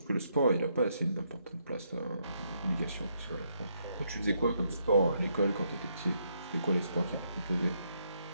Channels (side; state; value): both; inverted; correlation -0.76